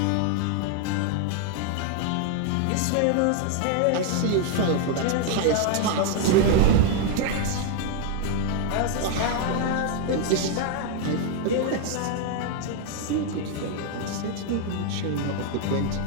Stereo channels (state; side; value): different; both; correlation 0.00